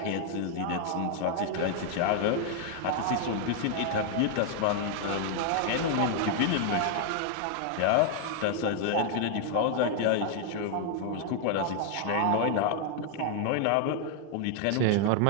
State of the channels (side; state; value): both; different; correlation 0.00